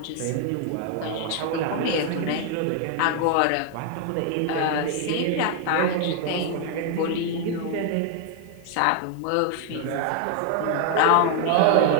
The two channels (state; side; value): different; both; correlation 0.00